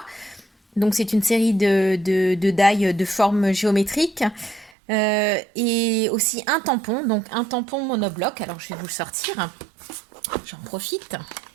Donc c'est une série de die de forme géométrique. Et aussi un tampon, donc un tampon monobloc. Alors je vais vous le sortir. J'en profite.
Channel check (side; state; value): left; drops out; at 4.7 s